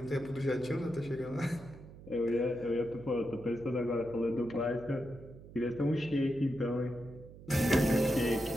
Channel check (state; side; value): noise; right; hum, 17 dB below the sound